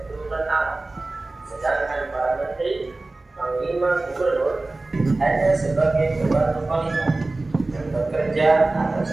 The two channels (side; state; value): left; quieter; 3.1 dB